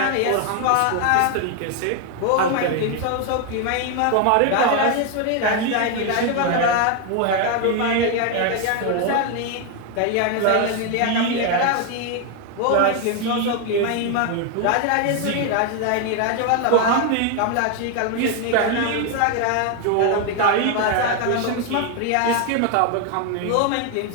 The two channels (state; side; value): different; both; correlation 0.01